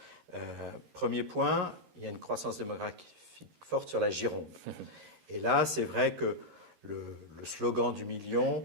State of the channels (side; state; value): left; late; 13 ms